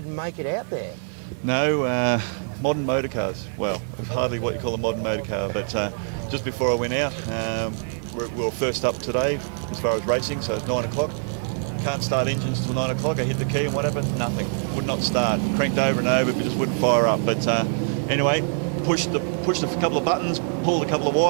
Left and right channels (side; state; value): left; silent; digital silence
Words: make it out there. No, modern motor cars. Well, hardly what you call a modern motor car, but just before I went out, we were first up today as far as racing, so 9 o'clock. Can't start engines till 9 o'clock. I hit the key and whatever, nothing. Would not start. Cranked over and over, just wouldn't fire up. But anyway, pushed a couple of buttons, pulled a couple of